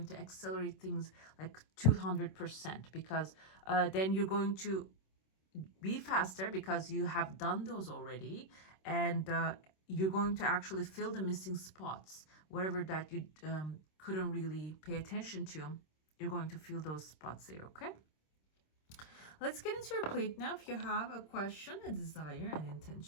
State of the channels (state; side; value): late; right; 26 ms